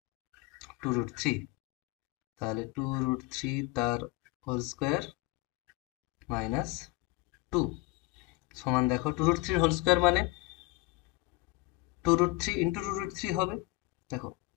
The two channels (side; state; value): right; quieter; 20.9 dB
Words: 2√3। তাহলে 2√3 তার হোল স্কোয়ার মাইনাস 2 সমান দেখো 2√3 হোল স্কোয়ার মানে 2√3 ইন্টু 2√3 হবে। দেখো